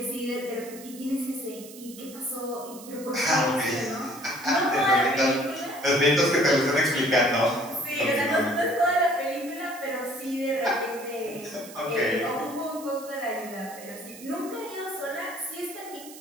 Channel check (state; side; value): noise; right; hiss, 17 dB below the sound